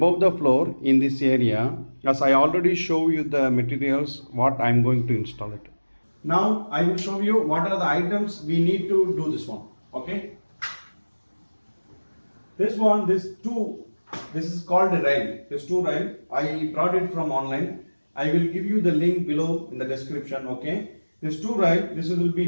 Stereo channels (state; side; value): inverted; both; correlation -1.00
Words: the floor in this area, as I already show you the materials what I am going to install it. Now I will show you what are the items we need to do this one. Okay, this is called a rail. This two rail I brought it from online. I will give you the link below in the description. Okay, this two rail, this will